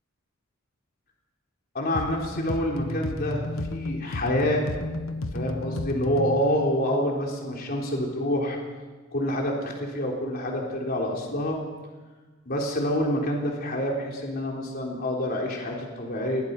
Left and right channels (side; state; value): both; normal; correlation 0.30